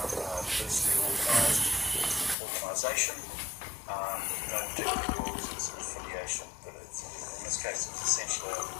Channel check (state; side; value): drops out; right; at 2.4 s